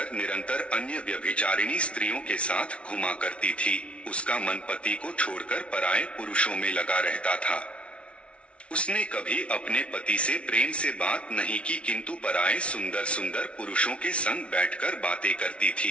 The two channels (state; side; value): late; right; 0.061 ms